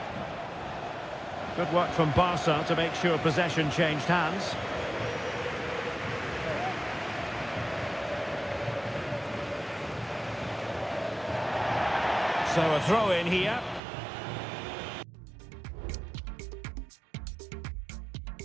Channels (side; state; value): left; drops out; at 13.8 s